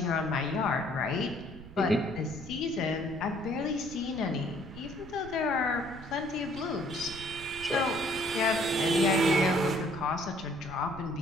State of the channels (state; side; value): noise; right; rumble, 16 dB below the sound